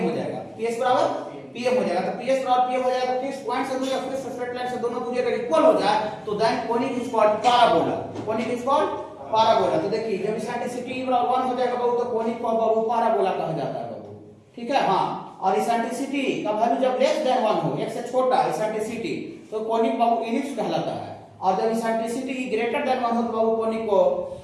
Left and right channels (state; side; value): identical; both; correlation 1.00